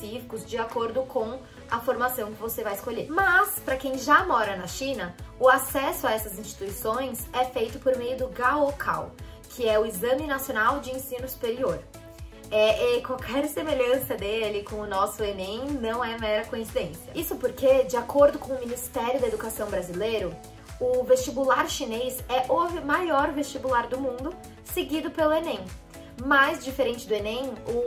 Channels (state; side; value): identical; both; correlation 1.00